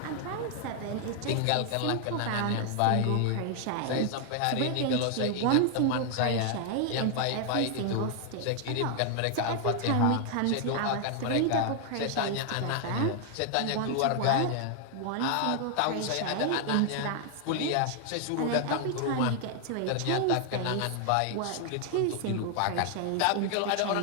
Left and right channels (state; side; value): different; both; correlation 0.00